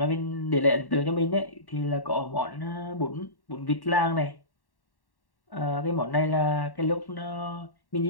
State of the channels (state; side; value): late; right; 1.1 ms